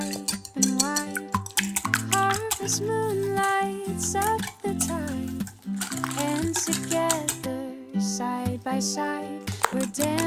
and wide. Harvest moon lights up the tide. And together, side by side, we're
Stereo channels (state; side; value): identical; both; correlation 1.00